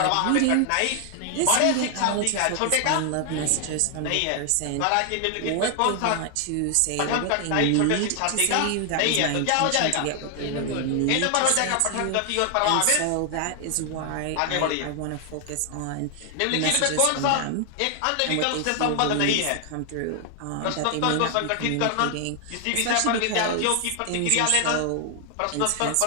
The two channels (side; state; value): both; different; correlation 0.00